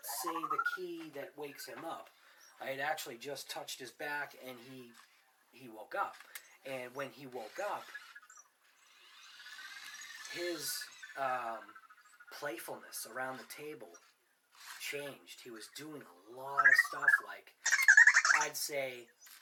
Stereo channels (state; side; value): identical; both; correlation 1.00